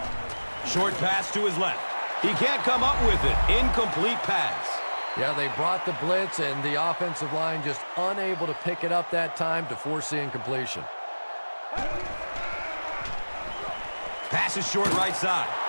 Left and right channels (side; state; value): both; inverted; correlation -1.00